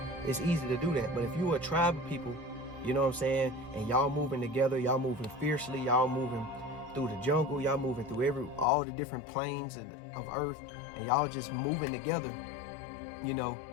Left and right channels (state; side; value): drops out; right; at 8.7 s